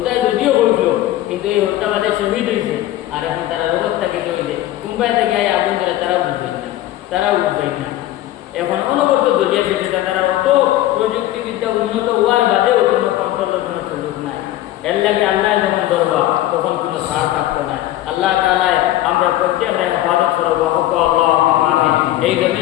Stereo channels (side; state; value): right; quieter; 14.5 dB